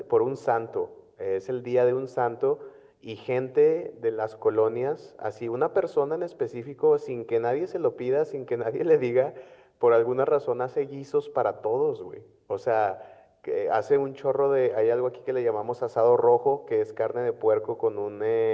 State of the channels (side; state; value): both; identical; correlation 1.00